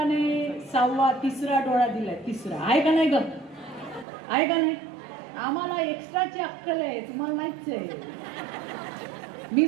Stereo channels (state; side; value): drops out; left; at 4.0 s